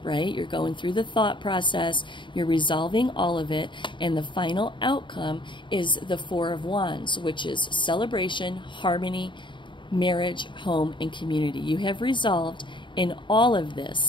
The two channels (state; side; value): late; right; 0.23 ms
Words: right? You're going through the thought process. You're resolving all of it. And the final outcome is the Four of Wands, which is celebration, harmony, marriage, home, and community. You have resolved in all of